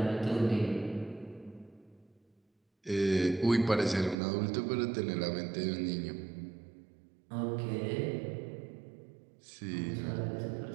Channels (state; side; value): drops out; left; at 4.2 s